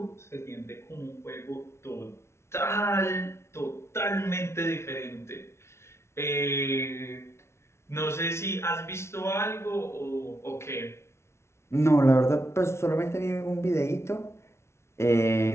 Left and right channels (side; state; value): right; late; 0.13 ms